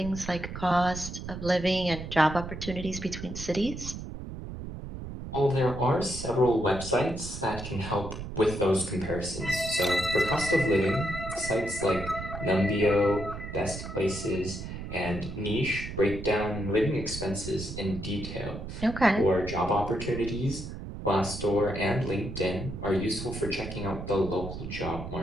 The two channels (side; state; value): right; noise; rumble, 9 dB below the sound